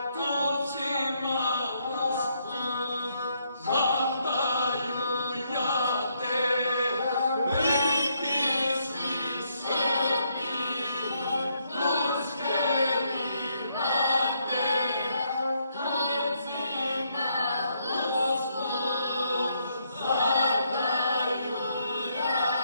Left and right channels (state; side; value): inverted; both; correlation -0.74